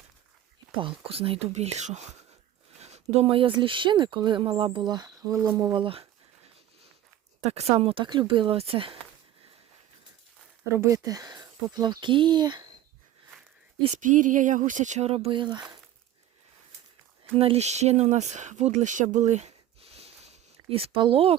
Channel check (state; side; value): quieter; left; 12.4 dB